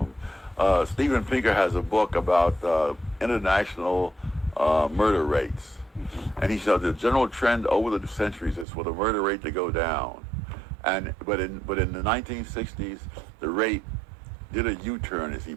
Steven Pinker has a book about international murder rates, and he said the general trend over the centuries is for the murder rate to go down, but in the 1960s the rate did a U-turn, as he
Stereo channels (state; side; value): drops out; left; at 8.7 s